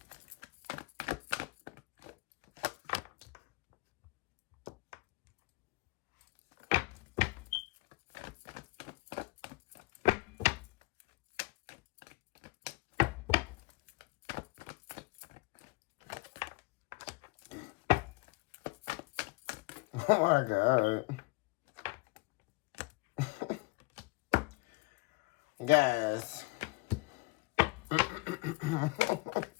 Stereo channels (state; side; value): quieter; right; 24.2 dB